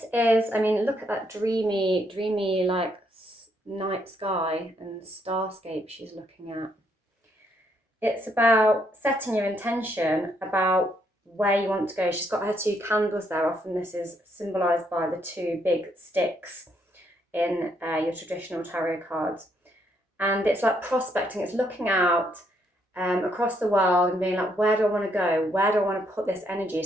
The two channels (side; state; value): both; normal; correlation 0.73